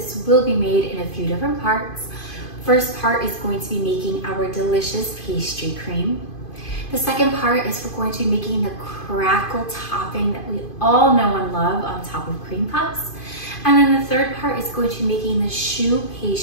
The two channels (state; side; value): late; right; 2.5 ms